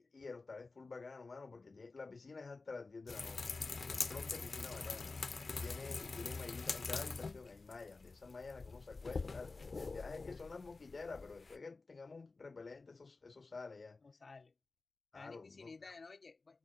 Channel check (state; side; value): quieter; right; 3.8 dB